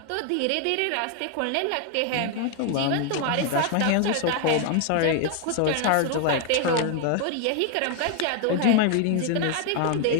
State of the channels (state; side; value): different; both; correlation 0.00